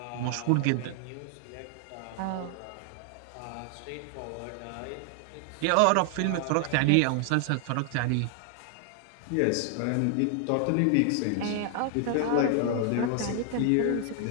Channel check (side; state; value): both; different; correlation 0.00